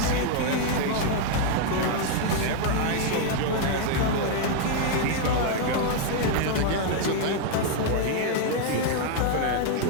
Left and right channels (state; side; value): different; both; correlation 0.00